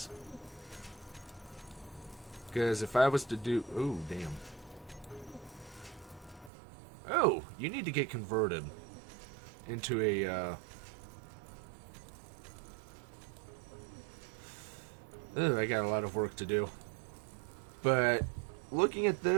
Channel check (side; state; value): left; drops out; at 6.5 s